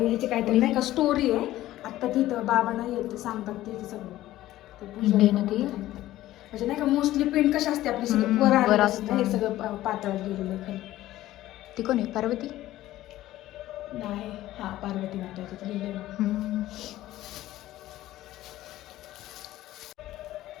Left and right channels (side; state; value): right; quieter; 15.0 dB